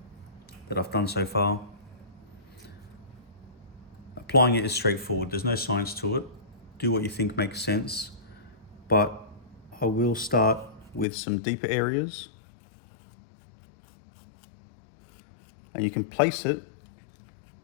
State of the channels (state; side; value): drops out; right; at 11.1 s